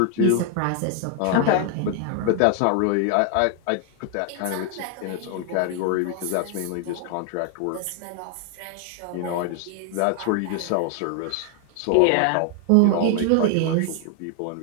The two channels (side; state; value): both; different; correlation 0.00